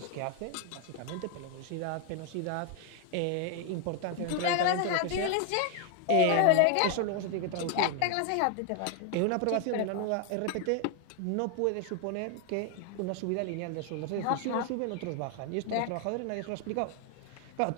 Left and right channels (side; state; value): both; different; correlation 0.00